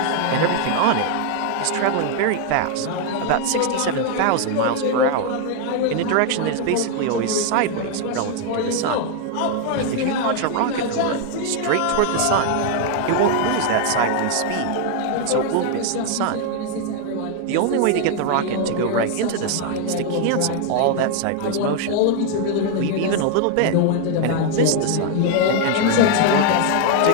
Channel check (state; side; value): different; both; correlation 0.00